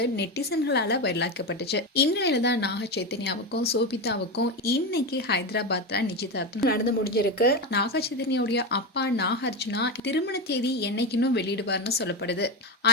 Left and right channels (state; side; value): normal; both; correlation 0.17